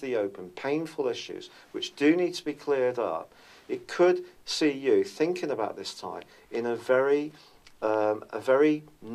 open painful issues which do need to be cleared up, it could see you thinking about this time in a very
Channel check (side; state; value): both; identical; correlation 1.00